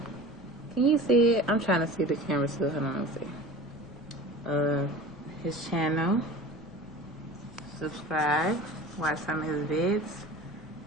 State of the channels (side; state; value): left; noise; rumble, 20 dB below the sound